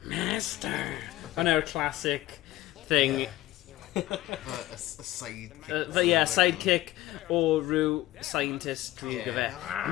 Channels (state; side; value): quieter; right; 16.0 dB